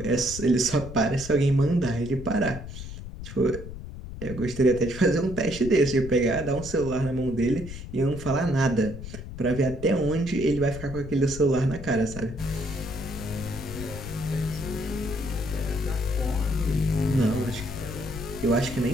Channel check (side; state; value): left; noise; rumble, 10 dB below the sound